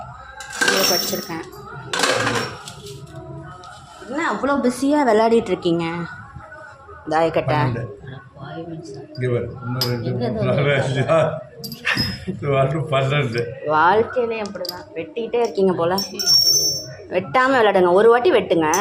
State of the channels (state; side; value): identical; both; correlation 1.00